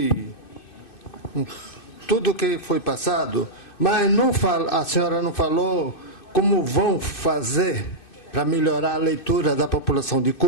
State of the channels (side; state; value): right; late; 2.6 ms